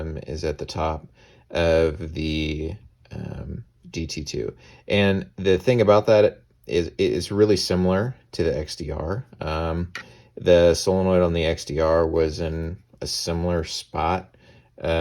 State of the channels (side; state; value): both; identical; correlation 1.00